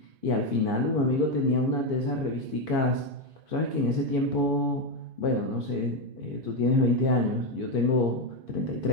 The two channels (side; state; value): left; late; 2.5 ms